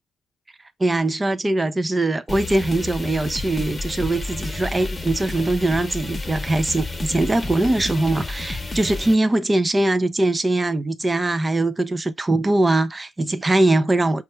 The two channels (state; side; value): normal; both; correlation 0.94